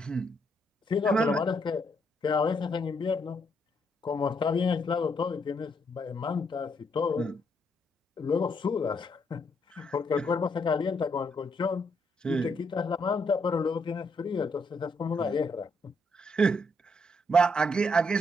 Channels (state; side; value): normal; both; correlation 0.75